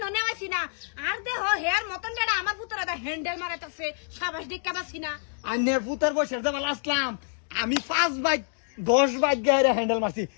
নেওয়াছি না। আর দেহ হেয়ার মতন যেটা আমার ফুতারে দা হ্যান্ডেল মারাইতাছে। সাবাস দিকা বাসি না। আন্নের পুতার বসে দেবা লাস্টলাম আমি 5 বাইক 10 বাইক গায়ে হ্যান্ডেল মারছি।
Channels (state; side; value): silent; right; digital silence